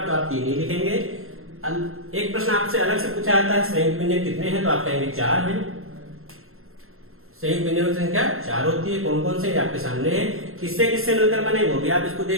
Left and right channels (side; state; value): left; late; 0.62 ms